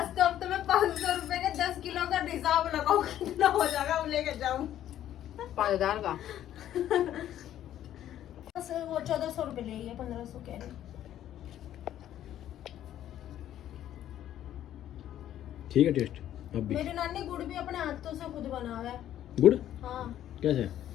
कब तो मैं 500 रुपए के 10 किलो का हिसाब लगाऊं, कितना हो जाएगा वो लेके जाऊं। 5000 का बस वो 1400 रुपये ले लिया, 1500 कह रही। ठीक है टेस्ट अब भी। मेरी नानी गुड़ भी अपने हाथों से खुद बना हुआ है। गुड़ हाँ, कैसे?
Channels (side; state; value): right; quieter; 11.7 dB